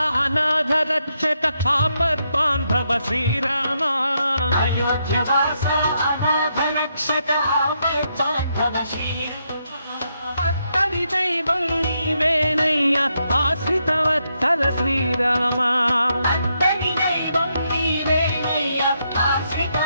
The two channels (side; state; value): both; inverted; correlation -0.80